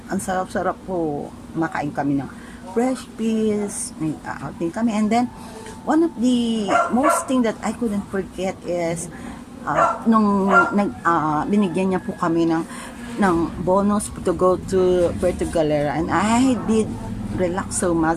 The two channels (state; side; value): identical; both; correlation 1.00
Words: ang sarap-sarap po, makain kami ng fresh fish, may outing kami, and then one of the most thing that I couldn't forget is nung binigyan niya po kami ng bonus to go to Puerto Galera, and I did relax so